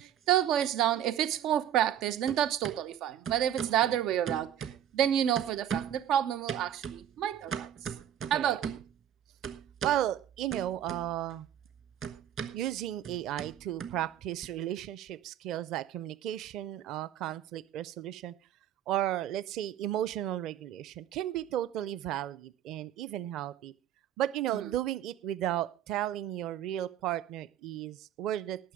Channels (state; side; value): quieter; left; 10.8 dB